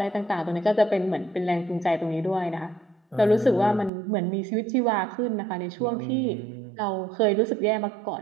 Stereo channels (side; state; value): left; drops out; at 3.9 s